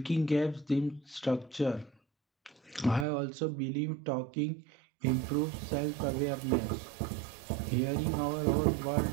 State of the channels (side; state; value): left; drops out; at 3.1 s